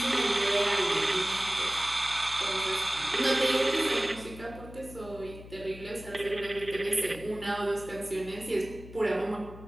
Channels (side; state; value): left; noise; hum, 16 dB below the sound